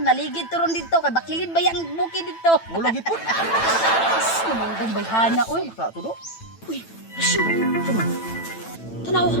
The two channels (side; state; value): right; late; 9.0 ms